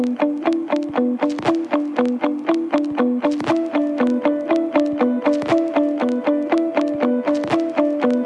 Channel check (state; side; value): identical; both; correlation 1.00